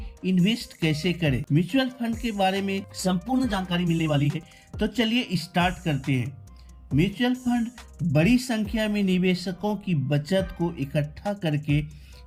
इन्वेस्ट कैसे करें। म्यूचुअल फंड के बारे में संपूर्ण जानकारी मिलने वाली है, तो चलिए स्टार्ट करते हैं। म्यूचुअल फंड बड़ी संख्या में निवेशकों की बचत को इकट्ठा करके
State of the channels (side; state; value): both; identical; correlation 1.00